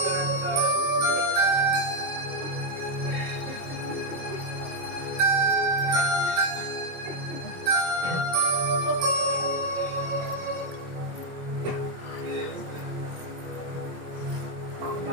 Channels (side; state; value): left; late; 23 ms